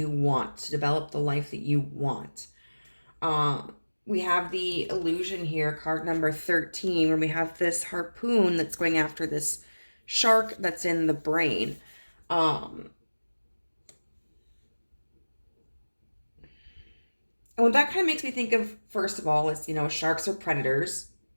want, to develop the life that you want. We have the illusion here, card number 13, where we have this harpoon that's going after this shark that's in the brain. And what that kind of makes me think of, first of all, is, sharks are predators.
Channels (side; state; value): both; inverted; correlation -1.00